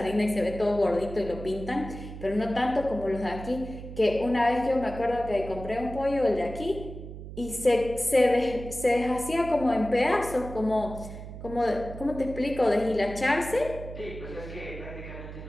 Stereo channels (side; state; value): right; noise; hum, 11 dB below the sound